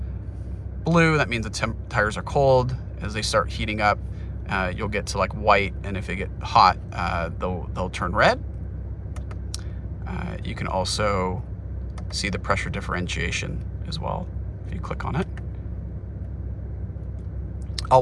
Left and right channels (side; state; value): both; identical; correlation 1.00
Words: blue, that means the tires are cold. As they start heating up, you'll get to like white, and if they get hot, they'll turn red. You can also see the pressure differentiation as well if you click on it.